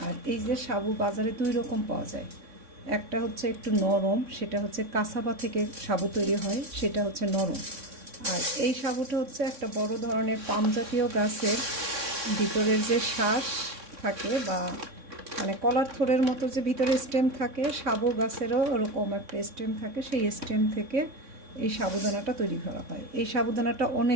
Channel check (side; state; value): left; late; 3.6 ms